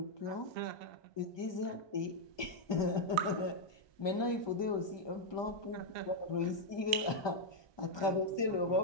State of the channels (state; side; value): late; right; 1.2 ms